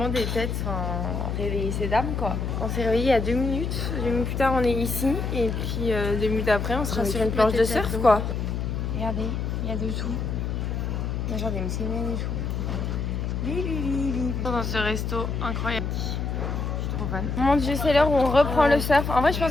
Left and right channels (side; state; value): left; noise; hum, 2 dB below the sound